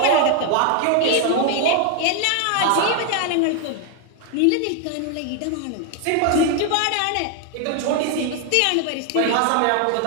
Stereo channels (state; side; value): different; both; correlation 0.00